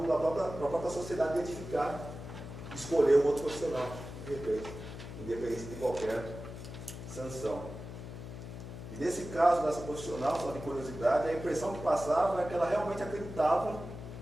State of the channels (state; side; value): noise; left; hum, 11 dB below the sound